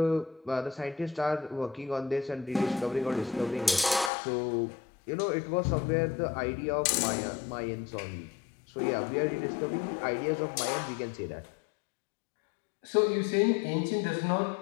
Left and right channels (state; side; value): drops out; right; at 4.1 s